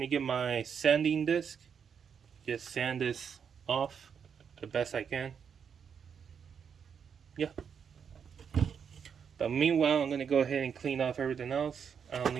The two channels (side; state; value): left; quieter; 7.1 dB